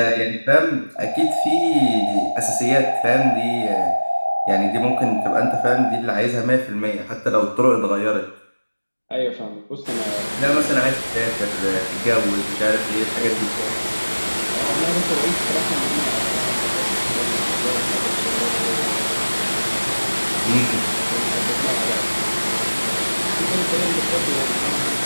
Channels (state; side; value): inverted; both; correlation -1.00